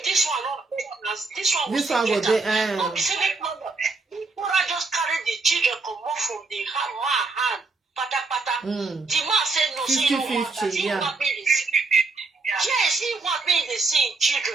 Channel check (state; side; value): quieter; left; 3.8 dB